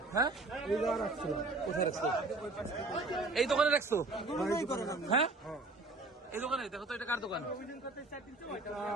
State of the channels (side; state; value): left; quieter; 3.2 dB